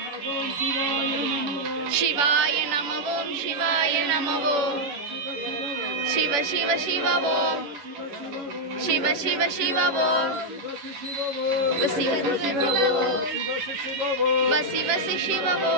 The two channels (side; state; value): left; late; 10 ms